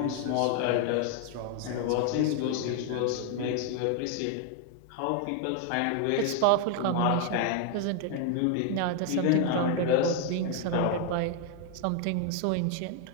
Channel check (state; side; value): different; both; correlation 0.00